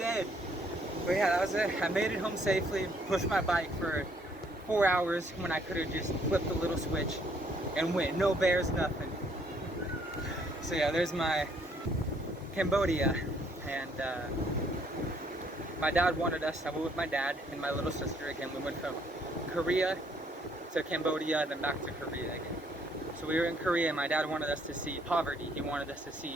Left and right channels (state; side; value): normal; both; correlation 0.66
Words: But yeah, that was it. I made it home safely, pushed my bike for 4 hours when I could have just flipped the little switch and went. No bears, nothing. So yeah, there's my Cambodia. And my dad wanted us, I went with my dad and my little sister again. We went from Korea to Cambodia and then back to Korea again. So we were in Korea and my dad wanted us to see poverty. He wanted us to